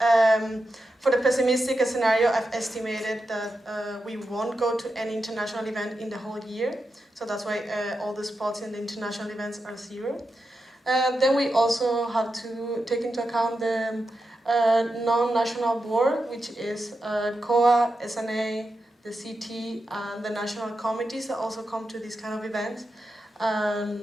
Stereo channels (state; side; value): normal; both; correlation 0.88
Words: For the pessimistic scenario, I've estimated that we won't go to any international event in the whole year, so that's why all the spots in the international events are 0. Then we also have to take into account the non-national board, which is COA, SNA, the CT, and the national committees that also come to these kind of events.